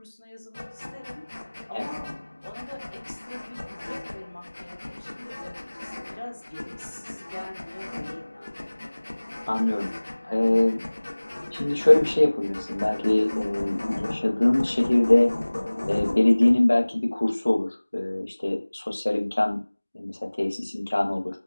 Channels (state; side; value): inverted; both; correlation -1.00